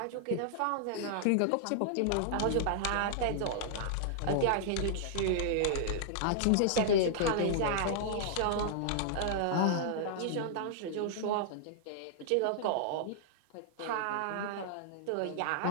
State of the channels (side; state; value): both; different; correlation -0.01